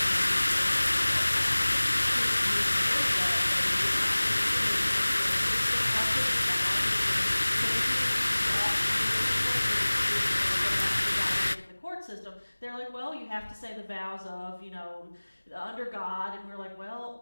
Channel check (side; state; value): both; inverted; correlation -1.00